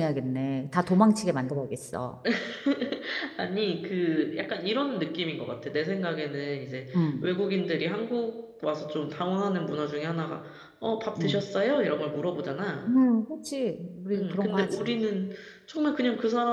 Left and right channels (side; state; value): both; identical; correlation 1.00